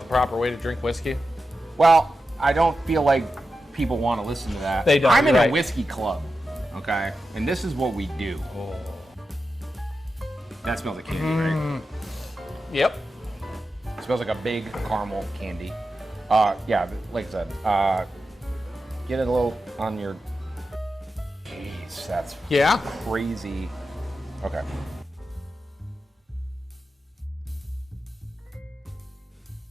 the proper way to drink whiskey? Well, I don't feel like people want to listen to that. They don't, I'm in you're a right. whiskey club, okay? And this is what we do. Oh. That smells like candy, right? Yep. It smells like a big caramel candy. Yeah, like I said, get it a little on your... Jeez, that's Yeah. crazy. Okay.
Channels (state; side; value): normal; both; correlation 0.90